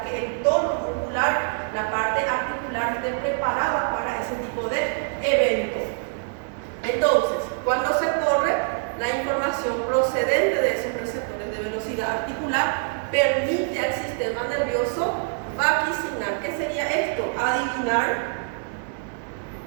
que el tono muscular, la parte articular esté preparada para ese tipo de evento. Entonces, cuando se corre, la información procedente de esos receptores de velocidad articular permite al sistema nervioso vaticinar. ¿Qué sería esto? Adivinar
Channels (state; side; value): silent; left; 62 dB below the other